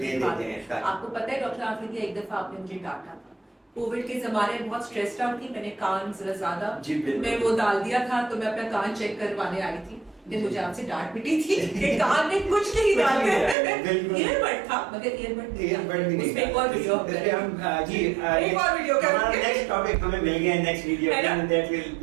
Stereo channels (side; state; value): left; drops out; at 13.6 s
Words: دیتے ہیں. آپ کو پتہ ہے ڈاکٹر عافیہ, ایک دفعہ آپ نے مجھے ڈانٹا تھا, کووڈ کے زمانے میں بہت اسٹریسڈ آؤٹ تھی, میں نے کان ذرا زیادہ میں وہ ڈال دیا تھا, تو میں اپنا کان چیک کروانے آئی تھی, مجھے آپ سے ڈانٹ پٹی تھی کہ کان میں کچھ نہیں ڈالتے. ایئر بڈ تھا مگر ایئر بڈ نہیں, اس میں ایک اور ویڈیو جی ایک اور ویڈیو کا نیکسٹ ٹاپک ہمیں مل گیا ہے, next video that will